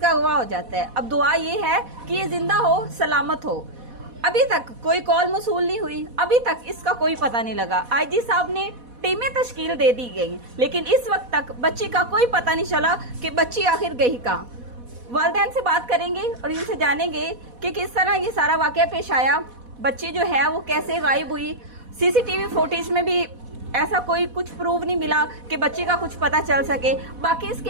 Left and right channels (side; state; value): left; late; 4.1 ms